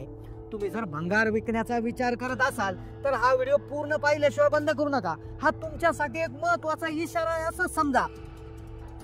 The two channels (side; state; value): both; identical; correlation 1.00